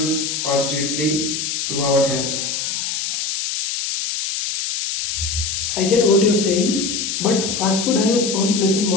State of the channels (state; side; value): noise; left; hiss, 2 dB below the sound